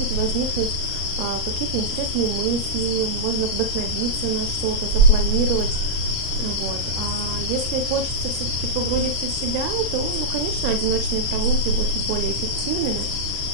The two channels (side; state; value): left; late; 38 ms